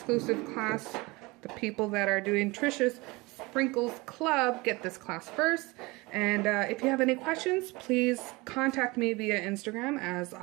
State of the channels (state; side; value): quieter; left; 23.7 dB